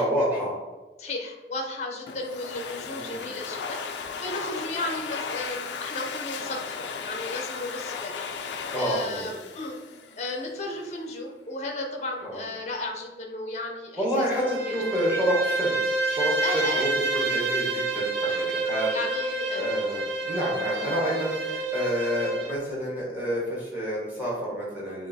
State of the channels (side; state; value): both; normal; correlation 0.36